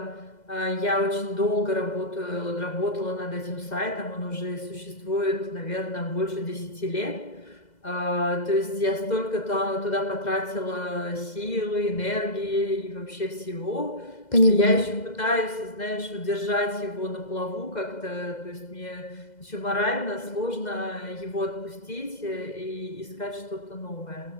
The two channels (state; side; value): late; right; 2.0 ms